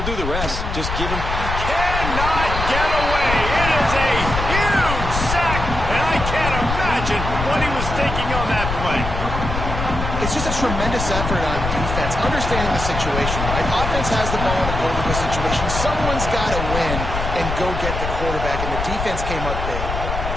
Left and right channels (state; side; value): noise; left; rumble, 4 dB below the sound